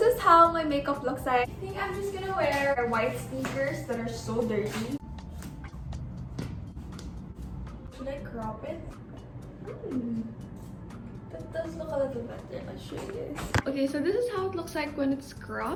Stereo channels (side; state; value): both; identical; correlation 1.00